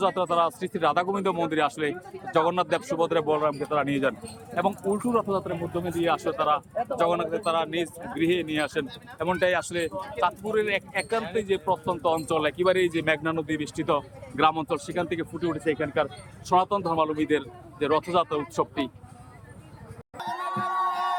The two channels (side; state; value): both; identical; correlation 1.00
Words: তারা শ্রী শ্রী রাধা গোবিন্দ মন্দিরে আসলে জগন্নাথ দেব সুভদ্রা বলরামকে তারা নিয়ে যান এবং উল্টো রথযাত্রার মাধ্যমে দিয়ে আসলে তারা জগন্নাথকে তারা নিজ গৃহে নিয়ে আসেন। এমনটাই আসলে চাঁদপুরের একান্তে যে প্রত্যন্ত অঞ্চল, একেবারেই যে মেঘনা নদী বেষ্টিত গ্রাম অঞ্চল, সেখান থেকে ফুটে উঠেছে এখানকার সনাতন ধর্মাবলম্বীদের যে রথযাত্রা উৎসবটি।